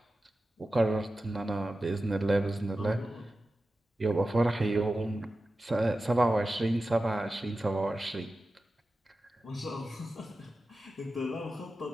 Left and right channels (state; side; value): normal; both; correlation 0.93